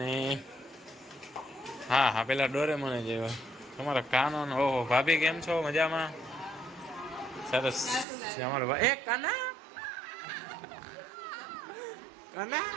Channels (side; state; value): left; drops out; at 8.1 s